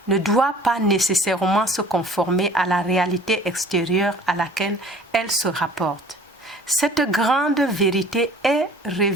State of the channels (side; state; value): both; normal; correlation 0.49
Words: ne doit pas nécessairement se conformer à la réalité extérieure à laquelle elle se rapporte. Cette grande vérité est